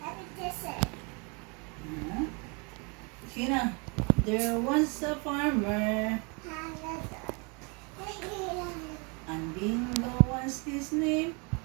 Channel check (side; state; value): left; quieter; 32.4 dB